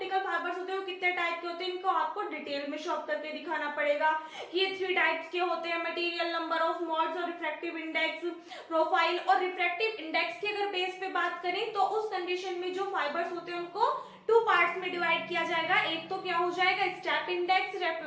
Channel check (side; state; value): both; identical; correlation 1.00